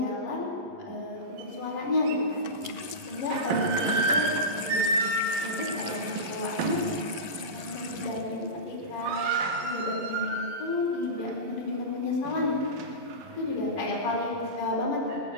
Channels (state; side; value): late; left; 11 ms